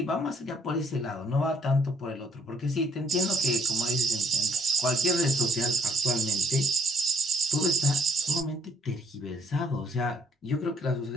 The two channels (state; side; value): normal; both; correlation 0.63